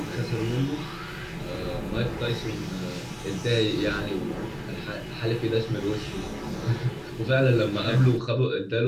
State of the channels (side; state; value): both; identical; correlation 1.00